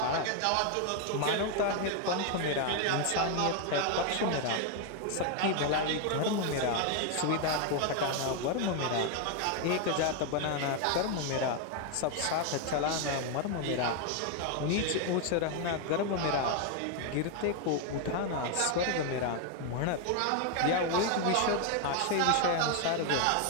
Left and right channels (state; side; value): different; both; correlation 0.01